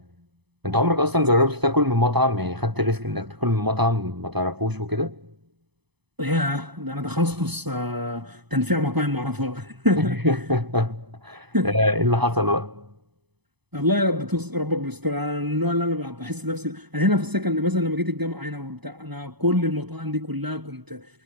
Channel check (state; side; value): late; left; 0.99 ms